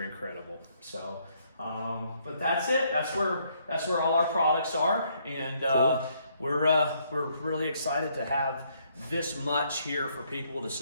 incredible. So, but that's it. That's where all our products are, and Cool. we're really excited to have this much here for people to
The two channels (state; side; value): inverted; both; correlation -0.70